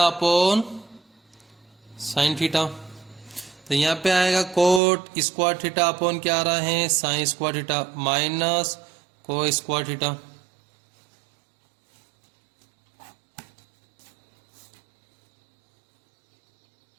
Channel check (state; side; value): drops out; left; at 4.8 s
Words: अपॉन साइन थीटा। तो यहाँ पे आएगा कोट स्क्वायर थीटा अपॉन क्या आ रहा है, साइन स्क्वायर थीटा माइनस को स्क्वायर थीटा।